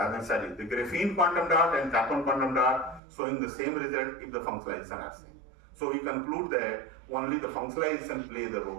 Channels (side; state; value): left; drops out; at 3.0 s